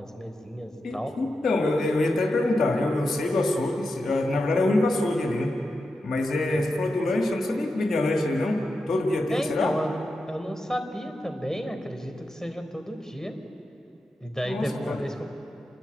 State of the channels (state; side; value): normal; both; correlation 0.89